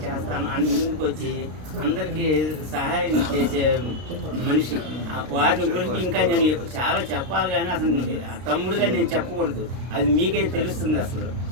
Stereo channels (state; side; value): late; left; 32 ms